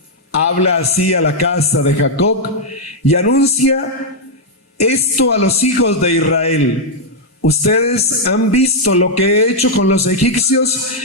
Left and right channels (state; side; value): normal; both; correlation -0.03